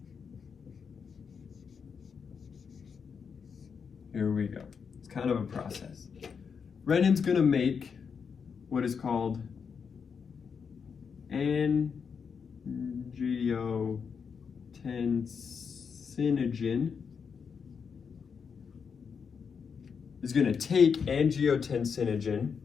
here we go. It's kind of a process. Renin's going to make what is called angiotensinogen. Is going to take angiotensinogen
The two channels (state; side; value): quieter; right; 6.2 dB